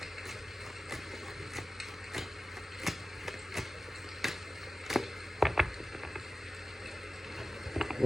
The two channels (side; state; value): both; normal; correlation 0.96